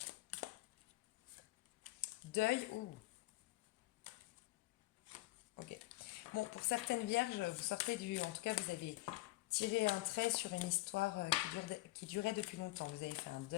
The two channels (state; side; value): quieter; right; 19.3 dB